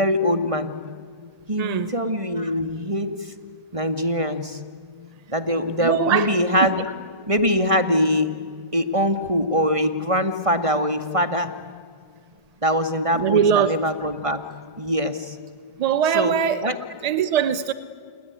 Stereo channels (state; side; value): late; left; 1.8 ms